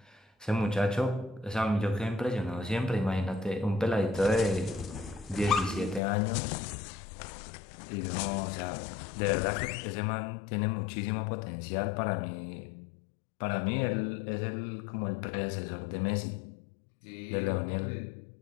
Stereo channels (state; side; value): drops out; right; at 6.0 s